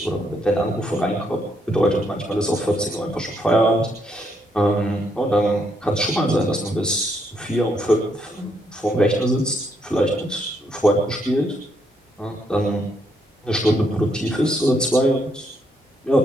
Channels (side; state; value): both; normal; correlation 0.74